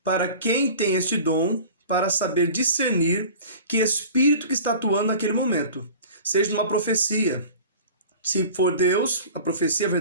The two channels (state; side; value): inverted; both; correlation -0.40